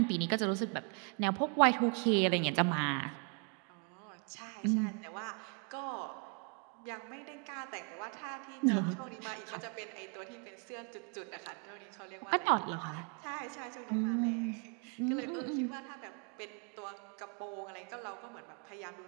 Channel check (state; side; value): quieter; left; 37.5 dB